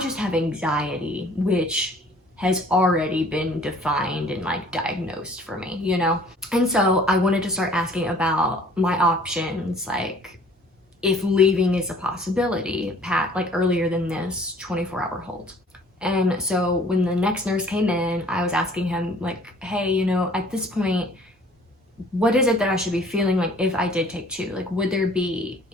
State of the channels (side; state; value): both; normal; correlation 0.54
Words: have anxiety, which has already been defined and like diagnosed for me, you know? And so I wanted to start asking about my options, like if leaving is a possibility, like earlier than this 24-hour hold. And so when the next nurse came in, I was asking him like, hey, you know, at this point, what is it that I should be feeling like if I did take 2? Like, would there be